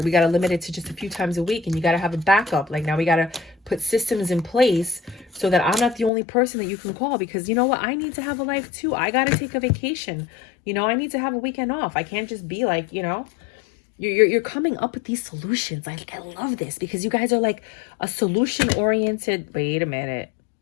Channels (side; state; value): right; drops out; at 6.1 s